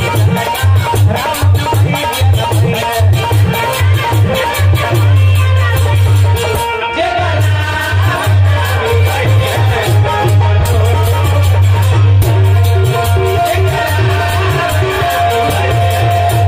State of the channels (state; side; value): identical; both; correlation 1.00